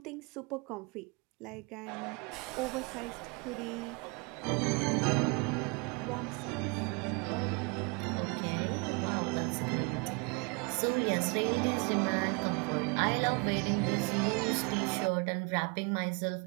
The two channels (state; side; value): quieter; left; 31.7 dB